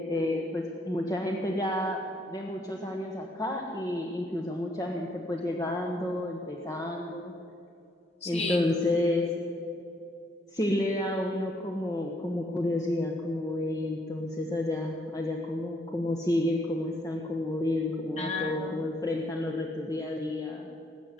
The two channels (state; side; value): normal; both; correlation 0.70